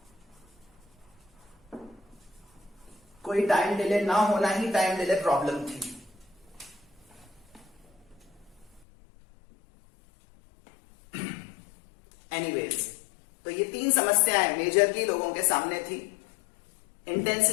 कोई टाइम डिले ना होना ही टाइम डिले प्रॉब्लम थी. एनीवेज, तो ये 3 समस्याएं मेजरली लोगों के सामने थी.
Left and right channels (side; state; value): right; drops out; at 8.8 s